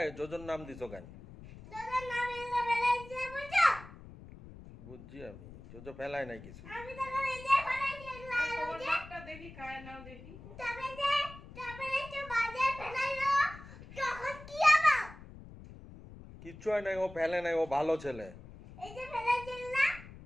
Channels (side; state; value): left; noise; rumble, 16 dB below the sound